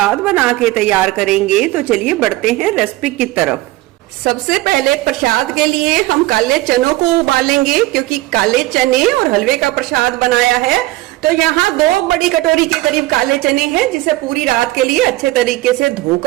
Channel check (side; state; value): left; quieter; 18.5 dB